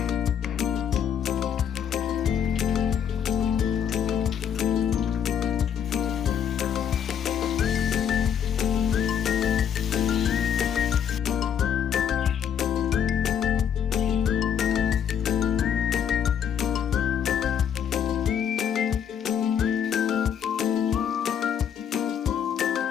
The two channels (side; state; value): right; quieter; 8.4 dB